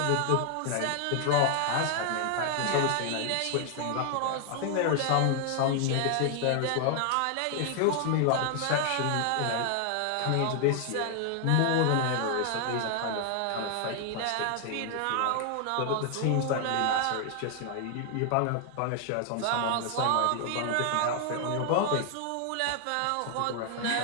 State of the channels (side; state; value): both; different; correlation 0.00